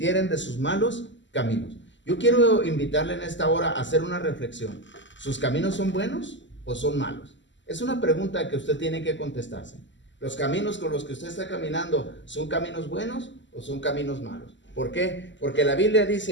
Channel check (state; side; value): late; right; 0.54 ms